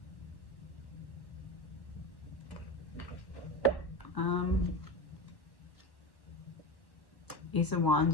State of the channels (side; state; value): right; late; 1.1 ms